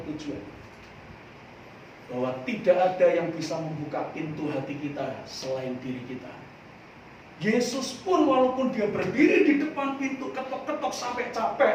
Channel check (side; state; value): both; identical; correlation 1.00